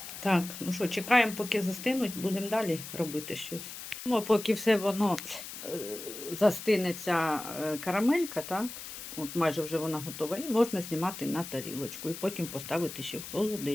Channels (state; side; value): noise; left; hiss, 10 dB below the sound